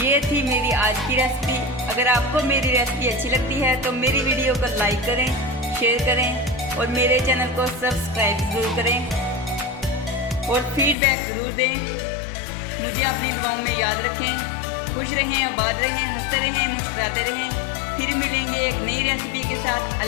थी मेरी आज की रेसिपी। अगर आपको मेरी रेसिपी अच्छी लगती है तो मेरी वीडियो को लाइक करें, शेयर करें और मेरे चैनल को सब्सक्राइब ज़रूर करें और फीडबैक ज़रूर दें। मुझे अपनी दुआओं में याद रखें। खुश रहें, आबाद रहें, हंसते रहें, मुस्कुराते रहें। फिर मिलेंगे एक नई रेसिपी के साथ।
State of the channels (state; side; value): drops out; right; at 11.0 s